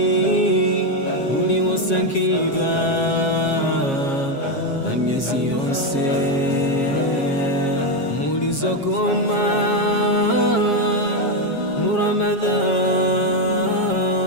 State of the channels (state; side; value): late; right; 7.4 ms